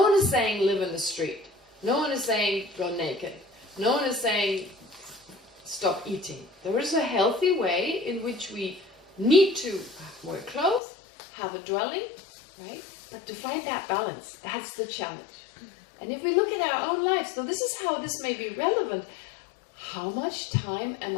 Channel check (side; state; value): right; drops out; at 10.8 s